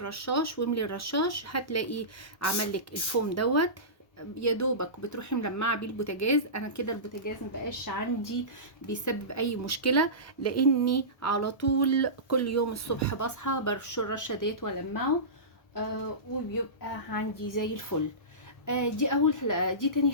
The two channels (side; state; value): right; late; 1.2 ms